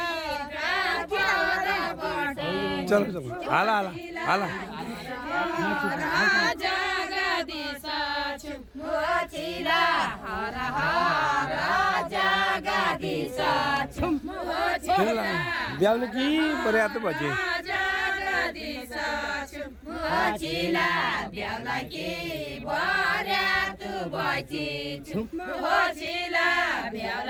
चलो चलो हाला हाला हाला जगदीश हर हर जगदीश ब्याउले कि पर्याप्त बजे जगदीश ब्याउला कि पर्याप्त बजे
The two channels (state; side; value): identical; both; correlation 1.00